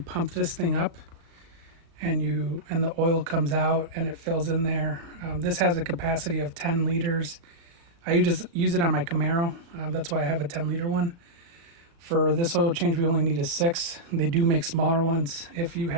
this thing up and the oil comes out and it fills in there. This has a capacity of 10 liters. I just use it on my Camaro. That's why I have a 10-liter one. For this oil change, we only need a 6. They do make smaller ones if you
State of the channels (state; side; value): late; left; 36 ms